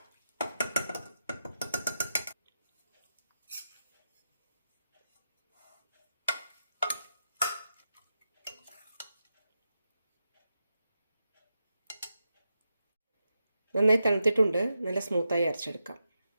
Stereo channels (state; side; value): inverted; both; correlation -0.88